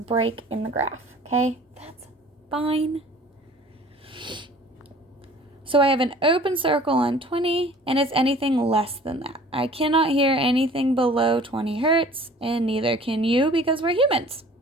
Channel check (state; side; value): normal; both; correlation 0.48